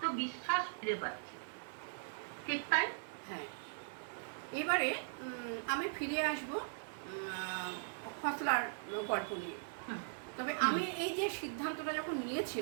ফিরে পাচ্ছি। ঠিক তাই? হ্যাঁ। এবারে আমি ফিরে আসবো ফসলার গল্প নিয়ে। তবে আমি এই যে সিদ্ধান্তটা যখন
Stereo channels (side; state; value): left; silent; 51 dB below the other